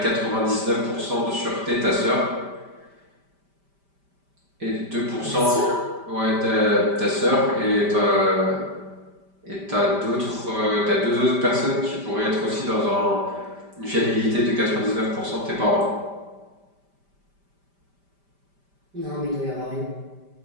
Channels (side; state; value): left; late; 5.1 ms